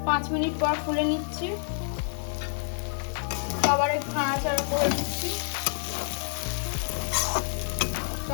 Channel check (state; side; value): silent; right; digital silence